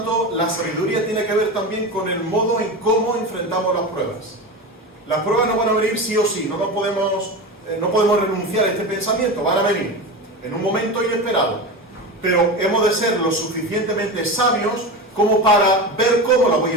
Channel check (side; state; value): both; normal; correlation 0.24